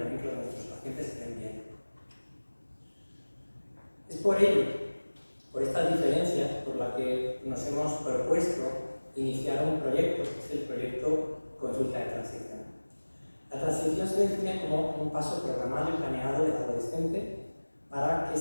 que nuestros pacientes estén bien. Es por ello, por estas diferencias, por las que nos hemos propuesto iniciar un proyecto, que es el proyecto Consulta de Transición. La transición se define como un paso programado y planeado del adolescente para que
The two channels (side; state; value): both; inverted; correlation -1.00